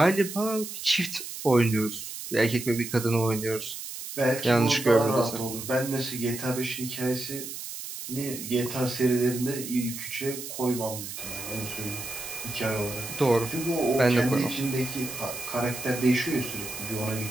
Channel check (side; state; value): right; noise; hiss, 9 dB below the sound